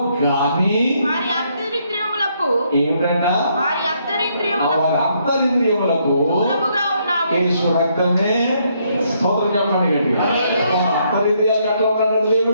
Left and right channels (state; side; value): inverted; both; correlation -0.72